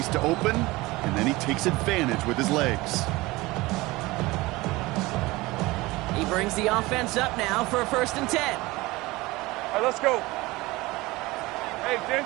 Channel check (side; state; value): left; quieter; 20.9 dB